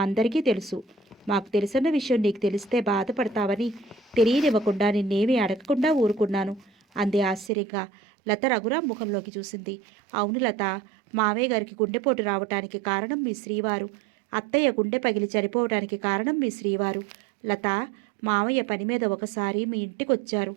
అందరికీ తెలుసు. మాకు తెలిసిన విషయం నీకు తెలిస్తే బాధపడతావని తెలియనివ్వకుండా నిన్నేమీ అడగకుండా ఊరుకున్నాను అంది ఆశ్చర్యంగా. లత రఘురాం ముఖంలోకి చూసింది. అవును లత, మావయ్య గారికి గుండెపోటు రావటానికి కారణం మీ శ్రీవారు. అత్తయ్య గుండె పగిలి చనిపోవటానికి కారణం మీ శ్రీవారు. లత, మావయ్య పని మీద ఒకసారి మీ ఇంటికి వచ్చారు.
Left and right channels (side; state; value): left; drops out; at 7.5 s